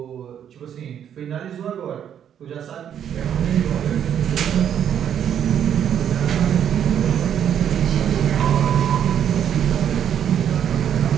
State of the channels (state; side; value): quieter; left; 9.2 dB